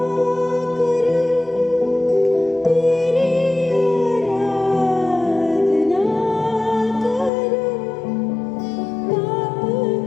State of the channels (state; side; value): drops out; right; at 7.3 s